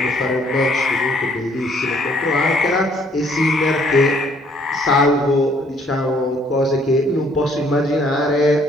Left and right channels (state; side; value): normal; both; correlation 0.63